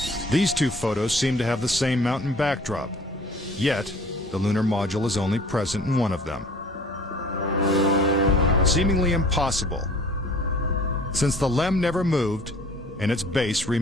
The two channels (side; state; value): both; normal; correlation 0.49